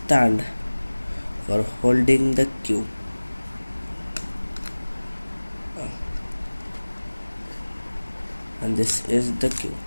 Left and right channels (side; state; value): both; inverted; correlation -1.00